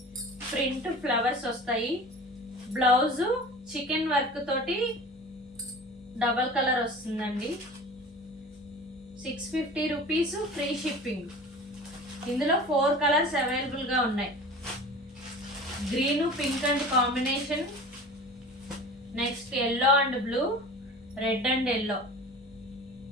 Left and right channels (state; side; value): normal; both; correlation 0.38